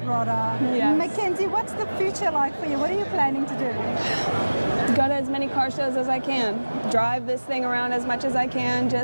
rodder. Yes. Mackenzie, what's the future like for you? What are you planning to do? Go to as many car shows as I can. Drive this thing around as much as I can.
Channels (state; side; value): inverted; both; correlation -1.00